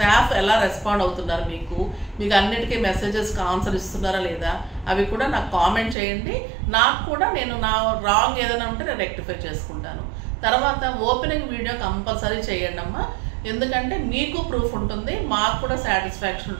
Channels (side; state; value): left; drops out; at 6.0 s